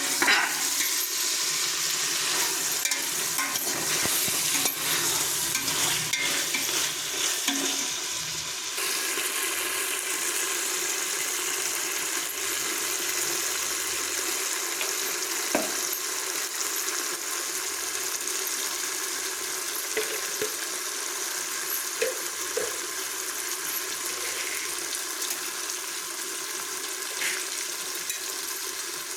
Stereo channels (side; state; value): both; identical; correlation 1.00